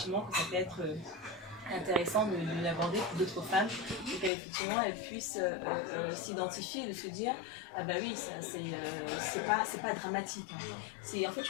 que ça peut être intéressant de l'aborder pour d'autres femmes, pour qu'effectivement elles puissent s'identifier et de se dire ah bah oui, ça c'est pas dramatique, hein. C'est en fait,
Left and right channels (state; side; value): drops out; right; at 4.3 s